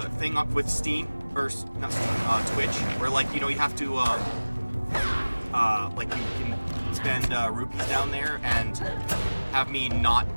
thing up with Steam or not Steam, Twitch, where like you have to like you can spend rupees down there and have me not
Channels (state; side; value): inverted; both; correlation -1.00